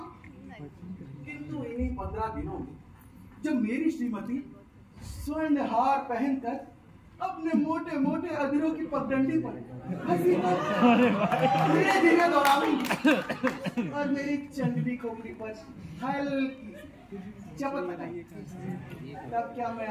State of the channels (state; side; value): identical; both; correlation 1.00